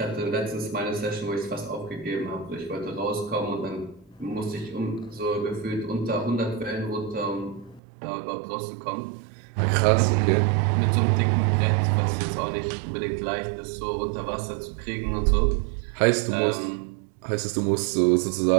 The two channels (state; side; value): drops out; left; at 7.8 s